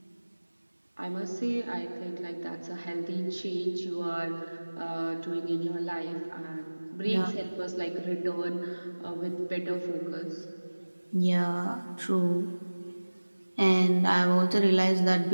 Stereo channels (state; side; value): inverted; both; correlation -1.00